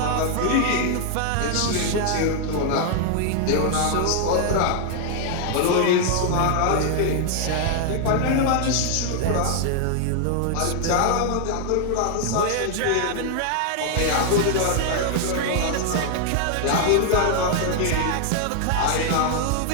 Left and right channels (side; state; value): both; different; correlation 0.00